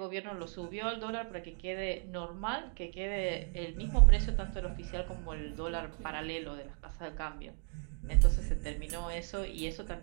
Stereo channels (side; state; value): left; quieter; 37.3 dB